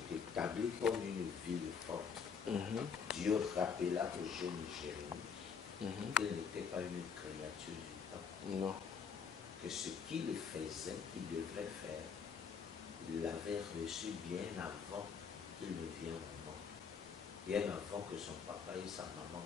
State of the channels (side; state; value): right; quieter; 6.3 dB